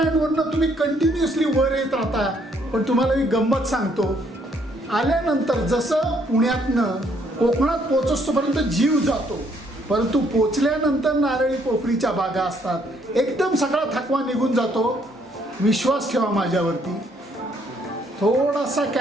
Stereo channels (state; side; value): normal; both; correlation 0.68